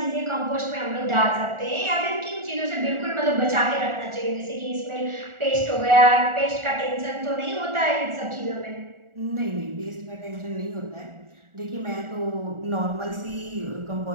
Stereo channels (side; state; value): left; late; 1.4 ms